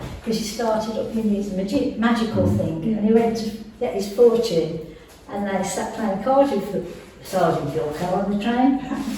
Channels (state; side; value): identical; both; correlation 1.00